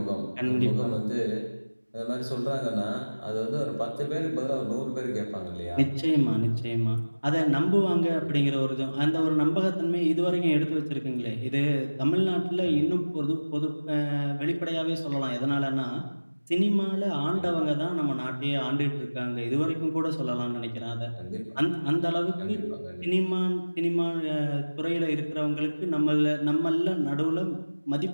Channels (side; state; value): both; inverted; correlation -1.00